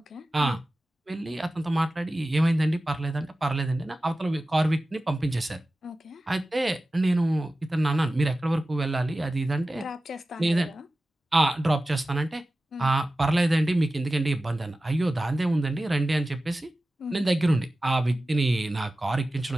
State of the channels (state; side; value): normal; both; correlation 0.95